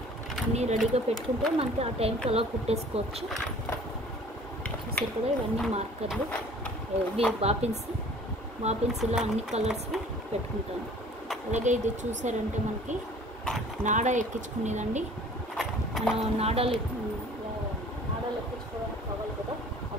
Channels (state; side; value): normal; both; correlation 0.50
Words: అన్నీ రెడీగా పెట్టుకుంటే మనకి ఆ టైంకి అలా కుట్టేసుకోవచ్చు. చూసారు కదా, ఇవన్నీ మార్కర్లు, ఇవి బాపిన్స్ ఇలా అన్ని కలర్స్వి పెట్టుకుంటాను. అలాగే ఇది చూసారంటే మనకి నాడా ఎక్కించుకునేదండి. మనం నాడాలు ఎక్కించుకోవడానికి కావాలి కదా,